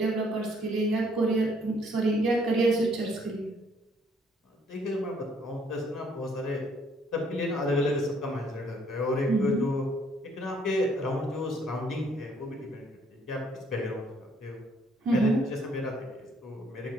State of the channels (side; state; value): both; normal; correlation 0.65